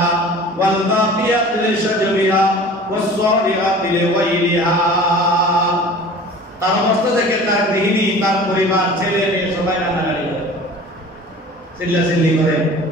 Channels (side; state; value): both; normal; correlation 0.42